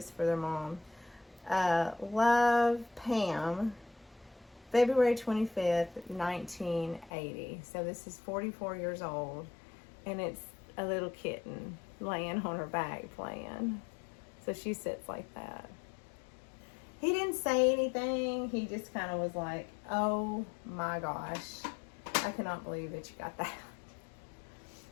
for their mom. Love, Pam. February 25th, 1980. So this is 44 years old. And it's a little kitten laying on her back playing. So she sits like that. He didn't say anything. He just kind of was like, oh my gosh, I cannot believe that you got that.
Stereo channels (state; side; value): drops out; right; at 7.1 s